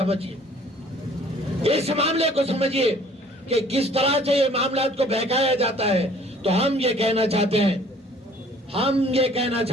इस मामले को समझिए कि किस तरह से ये मामला को बहकाया जाता है। तो हम ये कहना चाहते हैं, हम ये कहना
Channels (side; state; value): both; normal; correlation 0.55